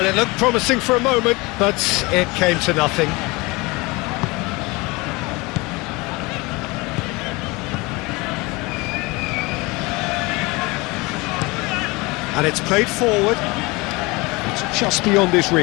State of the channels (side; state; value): right; quieter; 24.4 dB